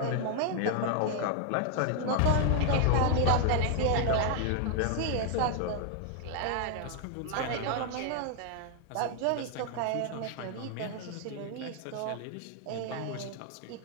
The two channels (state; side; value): different; both; correlation 0.00